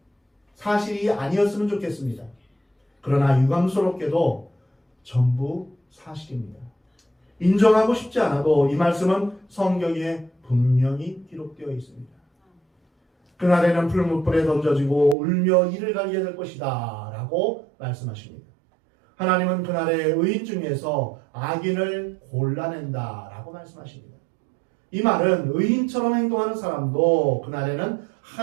사실이 아니었으면 좋겠습니다. 그러나 유감스럽게도 전부 사실입니다. 인정하고 싶지 않아도 이 말씀은 성경에 분명히 기록되어 있습니다. 그날에는 풀무불에 던져지고 울며 이를 갈게 될 것이다 라고 말씀하십니다. 하나님은 그날에 의인 중에서 악인을 골라낸다 라고 말씀하십니다. 이 말은 의인처럼 행동하는 사람도 그날에는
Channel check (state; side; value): drops out; left; at 15.2 s